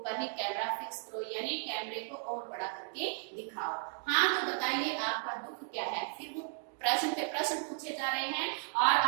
ही कैमरा फिक्स करो, यानी कैमरे को और बड़ा करके दिखाओ। हाँ तो बताइए आपका दुख क्या है? फिर वो प्रश्न पे प्रश्न पूछे जा रहे हैं और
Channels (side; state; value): left; silent; 55 dB below the other